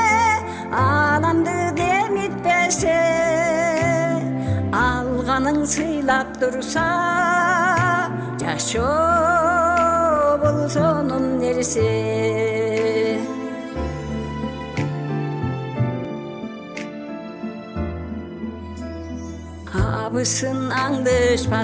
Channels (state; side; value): identical; both; correlation 1.00